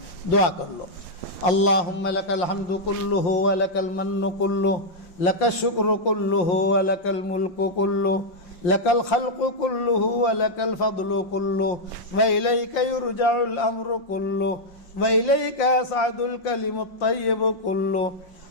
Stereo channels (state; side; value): late; right; 5.6 ms